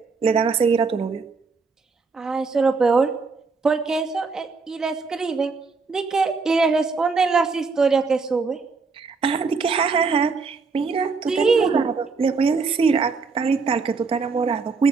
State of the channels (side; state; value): left; quieter; 4.6 dB